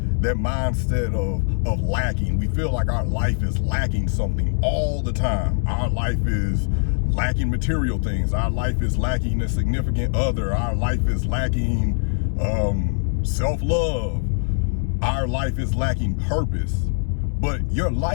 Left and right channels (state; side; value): silent; right; digital silence